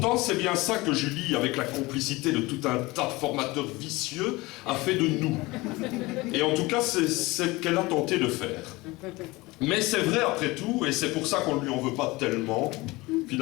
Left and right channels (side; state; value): right; quieter; 21.8 dB